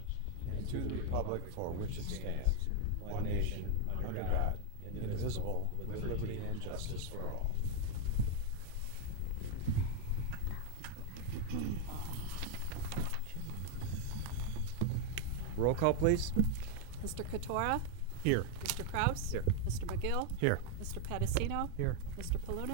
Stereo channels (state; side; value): different; both; correlation 0.00